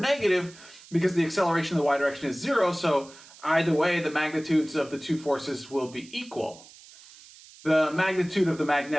because the acceleration in the y direction is 0, so either way, the magnitudes of the two forces will be equal. The magnitude of the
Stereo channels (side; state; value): right; noise; hiss, 21 dB below the sound